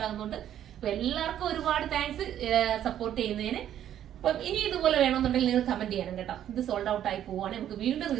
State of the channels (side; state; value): left; quieter; 10.8 dB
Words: ആകുന്നുണ്ട്. അപ്പൊ എല്ലാവർക്കും ഒരുപാട് താങ്ക്സ് സപ്പോർട്ട് ചെയ്യുന്നതിന്. അപ്പം ഇനി ഇതുപോലെ വേണമെന്നുണ്ടെങ്കിൽ നിങ്ങൾ കമന്റ് ചെയ്യണം കേട്ടോ. ഇത് സോൾഡ് ഔട്ട് ആയി പോവാണ്, നമുക്ക് വീണ്ടും